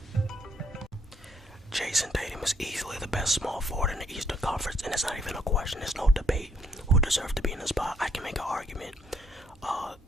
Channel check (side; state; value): both; normal; correlation 0.70